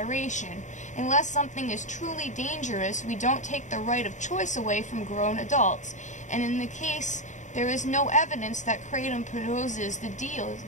Unless something is truly dangerous, we don't take the right of choice away from grown adults. And in the case, there is no evidence that kratom poses the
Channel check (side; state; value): right; late; 0.35 ms